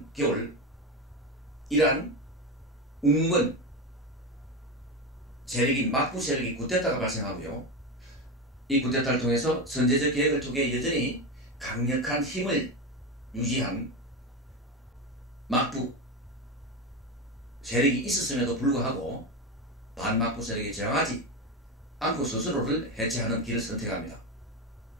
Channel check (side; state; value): both; normal; correlation 0.17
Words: 겨울 이란 웅문 세력인 막부 세력이 쿠데타가 발생하고요. 이 쿠데타를 통해서 선제적 계획을 통해 여전히 강력한 힘을 유지한 막부 세력이 있었음에도 불구하고 반막부 세력에 저항하지 않고 스스로를 해체하는 길을 선택합니다.